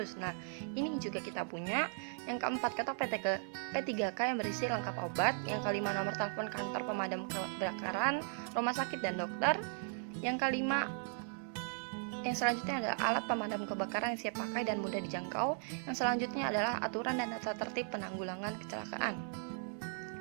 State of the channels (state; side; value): silent; left; 53 dB below the other